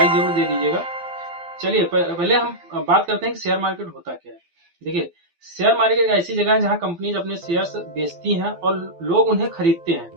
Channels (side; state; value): left; late; 12 ms